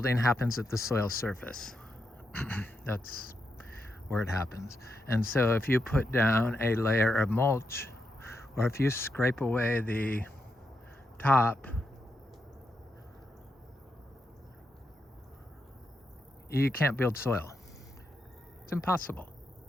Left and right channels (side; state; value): both; normal; correlation 0.84